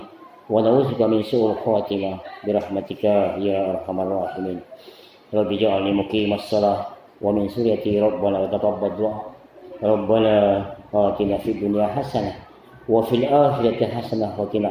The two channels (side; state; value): both; identical; correlation 1.00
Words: wa na'udzubika min su'il khatimah bi rahmatika ya arhamar rahimin. Rabbi ja'alni muqimas shalah wa min suriyati rabbana wa taqabbal du'a. Rabbana atina fid dunya hasanah wa fil akhirati hasanah wa